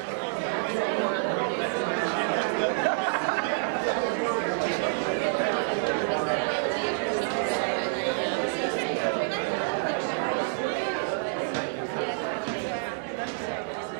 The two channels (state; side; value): silent; left; digital silence